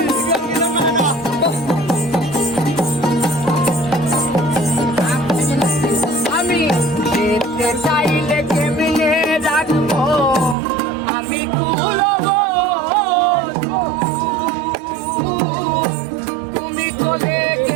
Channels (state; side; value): drops out; left; at 10.6 s